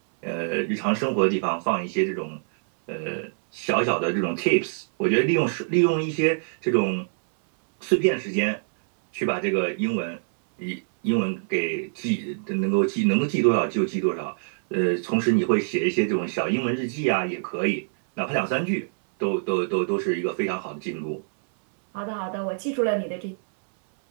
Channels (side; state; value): left; silent; 62 dB below the other